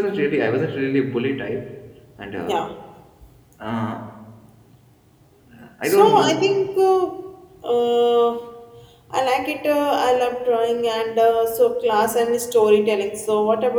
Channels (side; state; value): both; identical; correlation 1.00